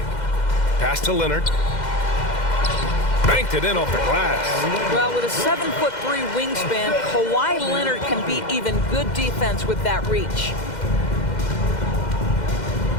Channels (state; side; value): late; right; 2.1 ms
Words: Pass to Leonard. Banked it in off the glass. Well, with a 7'3" wingspan, Kawhi Leonard can beat even good defense with that reach.